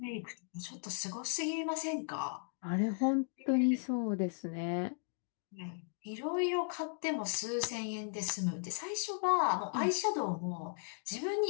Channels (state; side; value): silent; right; 53 dB below the other